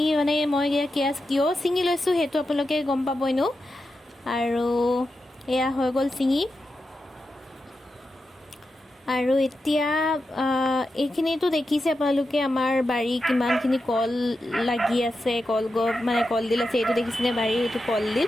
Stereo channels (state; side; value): normal; both; correlation 0.89